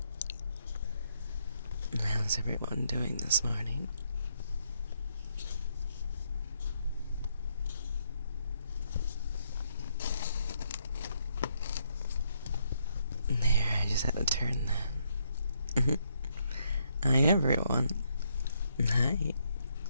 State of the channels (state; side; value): inverted; both; correlation -0.74